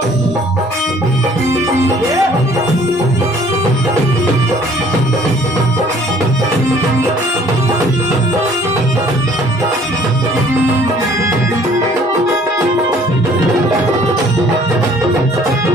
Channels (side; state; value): both; normal; correlation 0.57